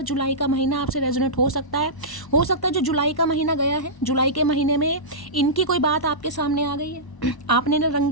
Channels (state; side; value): late; right; 1.0 ms